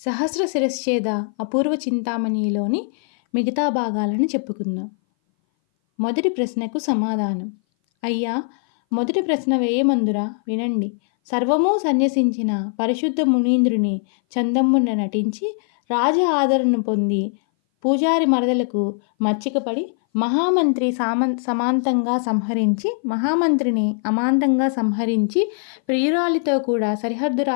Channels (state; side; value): silent; right; 59 dB below the other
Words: శిరశ్ఛేద అపూర్వ చింతామణి'లోని మిగతా భాగాలను చెప్పుకుందాం. మొదటి ప్రశ్నకు సమాధానం. అయ్యా, మొదటి ప్రశ్న వేయమందురా వినండి. సర్వమూ సన్యసించిన పరిశుద్ధ మునీంద్రుని చందమ్మున నటించి రాజ ఆదరణ పొంది పూజారి మరదలకు మచ్చికపడి మహామంత్రిని అమాంతంగా సంహరించి ప్రియురాలితో కూడా సరిహద్దు